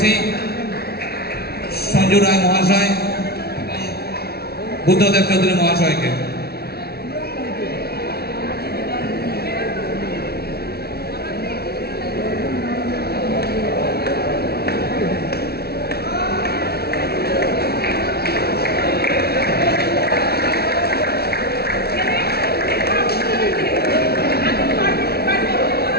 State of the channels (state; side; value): late; right; 0.45 ms